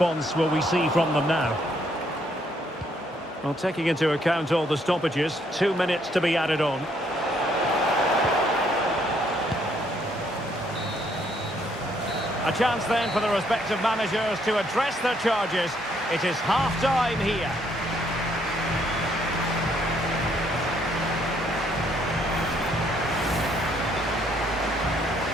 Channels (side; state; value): both; normal; correlation 0.69